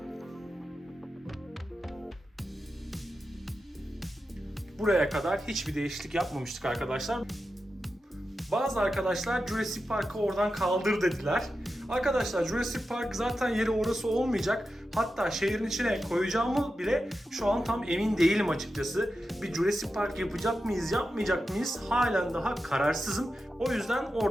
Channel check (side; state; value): both; normal; correlation 0.91